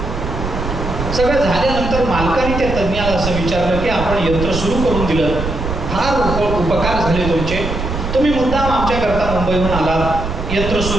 सगळं झाल्यानंतर मालकाने त्या तज्ञाला असं विचारलं की आपण यंत्र सुरू करून दिलं, फार उपकार झाले तुमचे, तुम्ही मुद्दाम आमच्याकरता मुंबईहून आलात, यंत्र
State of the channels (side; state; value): right; noise; rumble, 5 dB below the sound